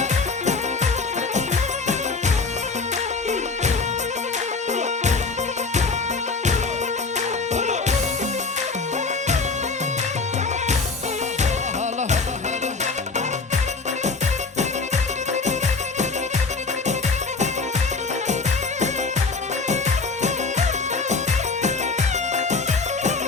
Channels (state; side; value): quieter; right; 4.1 dB